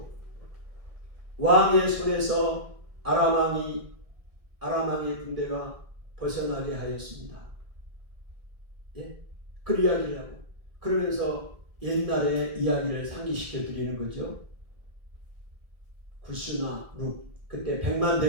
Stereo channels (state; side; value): late; left; 1.7 ms